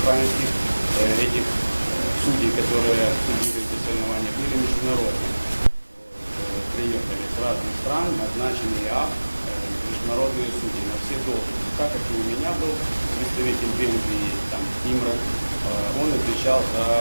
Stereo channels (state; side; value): inverted; both; correlation -1.00